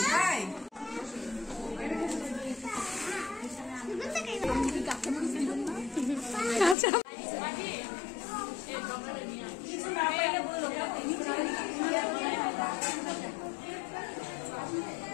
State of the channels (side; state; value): right; drops out; at 6.8 s